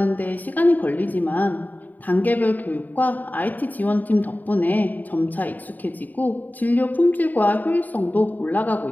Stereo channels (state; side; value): late; right; 0.084 ms